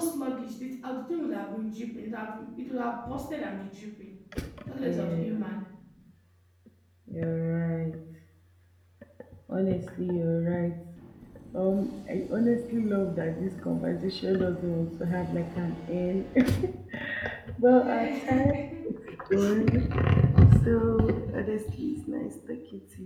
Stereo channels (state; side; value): identical; both; correlation 1.00